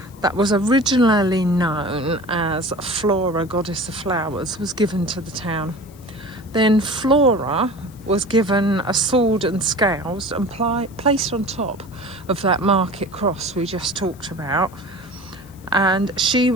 that was originally known as Flora, goddess of flowers, was given to the town. Then Flora was given a sword and scales and placed on top of that market cross we just talked about, and she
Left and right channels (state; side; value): noise; left; hiss, 26 dB below the sound